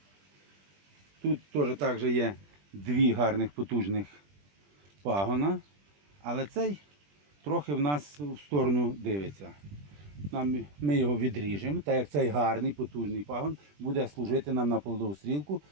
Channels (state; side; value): late; left; 20 ms